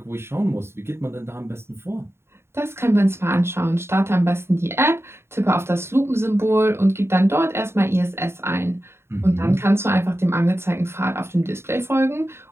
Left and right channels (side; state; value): left; late; 0.12 ms